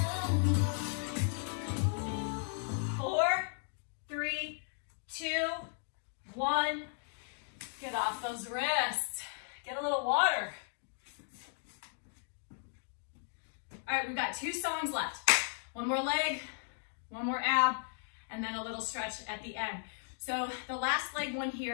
4, 3, 2, 1. Get off those wrists. Get a little water. All right, we've got 2 songs left. One more leg, one more ab, and then a little stretch at the end. So the last leg one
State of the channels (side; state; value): right; silent; digital silence